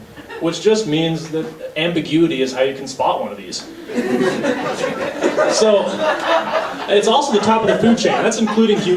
which just means that ambiguity is how you can spot one of these. So, it's also the top of the food chain. That's including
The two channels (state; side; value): identical; both; correlation 1.00